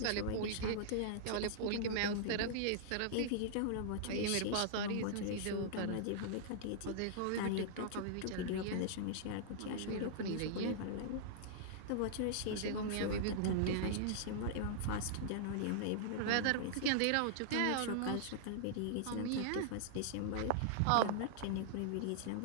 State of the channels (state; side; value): different; both; correlation -0.01